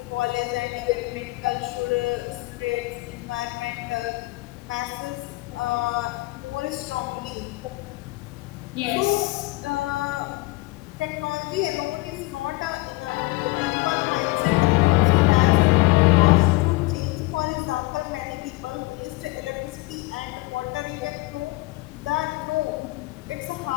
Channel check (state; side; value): quieter; right; 22.0 dB